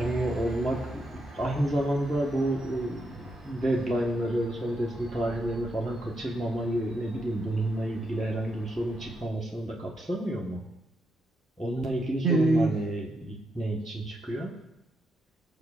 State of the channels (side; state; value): both; normal; correlation 0.82